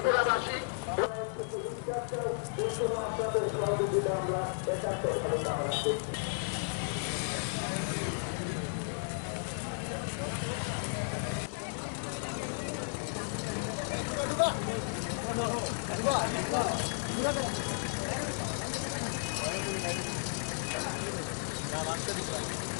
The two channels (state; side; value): silent; right; digital silence